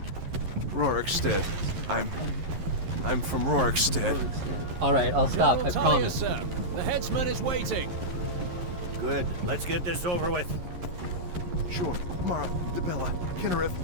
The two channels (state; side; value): late; left; 11 ms